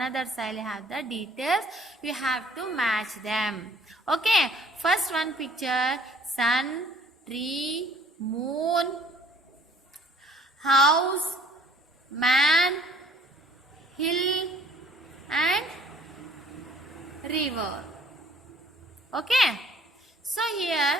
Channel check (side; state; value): both; normal; correlation 0.58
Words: side have the details. You have to match them. Okay, first one picture, sun, tree, moon, house, man, hill and river. Okay, so here